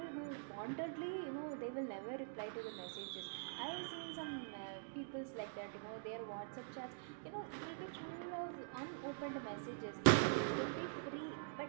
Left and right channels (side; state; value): left; silent; digital silence